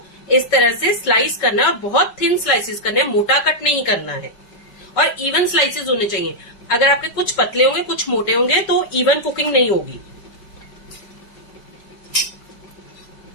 इस तरह से स्लाइस करना है और बहुत थिन स्लाइसेस करने हैं, मोटा कट नहीं करना है, और इवन स्लाइसेस होने चाहिए। अगर आपके कुछ पतले होंगे कुछ मोटे होंगे तो इवन कुकिंग नहीं होगी।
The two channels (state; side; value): late; right; 5.1 ms